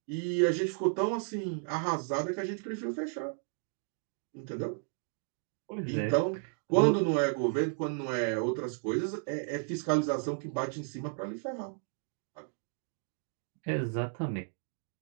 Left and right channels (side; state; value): left; silent; 55 dB below the other